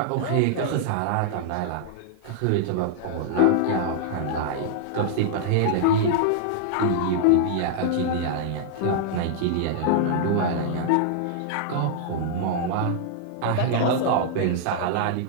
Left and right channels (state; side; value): different; both; correlation -0.01